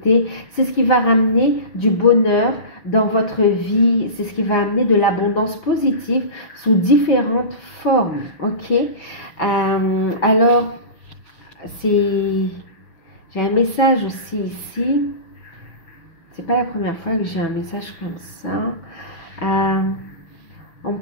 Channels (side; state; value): right; late; 6.0 ms